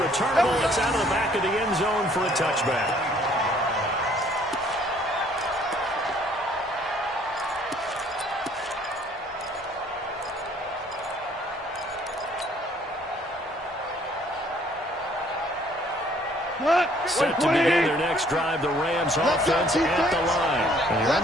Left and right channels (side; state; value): both; normal; correlation 0.60